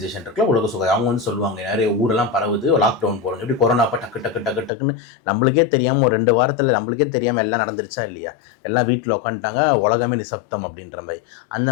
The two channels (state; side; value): drops out; right; at 4.7 s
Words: இருக்குல்ல, உலக சுகாதாரம், அவங்க வந்து சொல்லுவாங்க நிறைய ஊரெல்லாம் பரவுது, லாக்டவுன் போடுங்க. எப்படி கொரோனாப்போ டக்குன்னு நம்மளுக்கே தெரியாமல் ஒரு 2 வாரத்தில் நம்மளுக்கே தெரியாமல் எல்லாம் நடந்துருச்சா இல்லையா? எல்லாம் வீட்டில் உட்காந்துட்டாங்க, உலகமே நிசப்தம் அப்படின்ற மாதிரி. அந்த